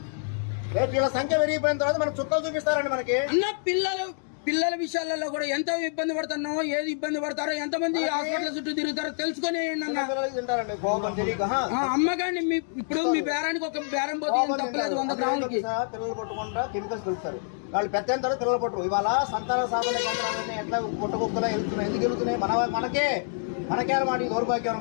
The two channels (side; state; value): right; silent; digital silence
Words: వీళ్ళ సంఖ్య పెరిగిపోయిన తర్వాత మనకు చుక్కలు చూపిస్తారండి. మనకి అన్న పిల్లల విషయాలలో కూడా ఎంత ఇబ్బంది పడుతున్నావు, ఏది ఇబ్బంది పడతారో, ఎంతమంది హాస్పిటల్ చుట్టూ తిరుగుతారో తెలుసుకుని అమ్మగాని. ఇప్పుడు మీ బేరానికి ఒక బేరం పోతే తప్పలేదు 100 గ్రాములకి. పిల్లలు పట్టుకుంటా కెమికల్స్ కలుపుతారు. వాళ్ళు పెద్ద పిల్లలు పట్టరు. ఇవాళ సంతాన సాధన కేంద్రాలన్నీ ఎట్లా పుట్టకుక్కలా వెళ్తున్నాయి. ఎందుకు వెళ్తున్నాయి? మనకే అన్నమాట. దౌర్భాగ్యం